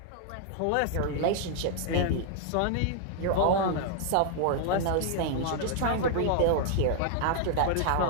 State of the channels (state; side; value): different; both; correlation 0.00